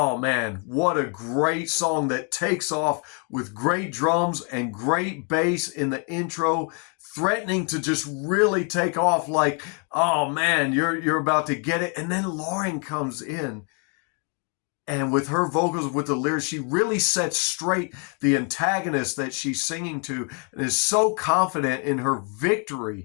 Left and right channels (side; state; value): right; quieter; 38.1 dB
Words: man, what a great song that takes off with great drums and great bass in the intro, threatening to just really take off like, oh man, you're about to get it. And then Lauren comes in, and with her vocals, with the lyrics, she really sets straight the antagonist that she's singing to and is so confident in her